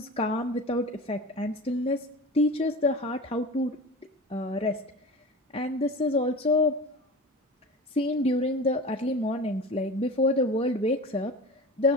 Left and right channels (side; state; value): both; normal; correlation 0.34